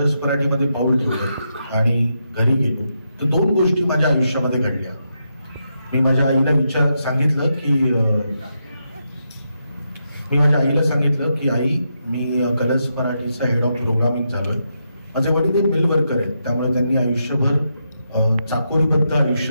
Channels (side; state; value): both; inverted; correlation -0.83